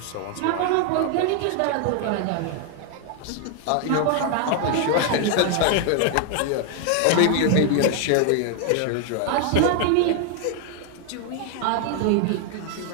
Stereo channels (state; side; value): different; both; correlation 0.00